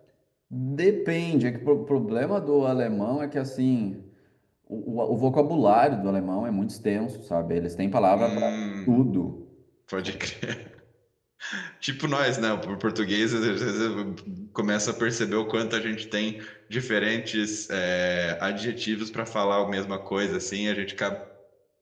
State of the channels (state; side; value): identical; both; correlation 1.00